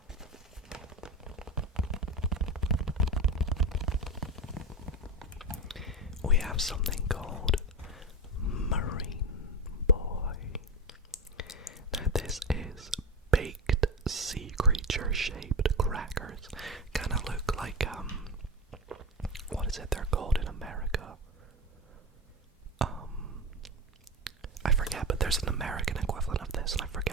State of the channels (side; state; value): both; normal; correlation 0.20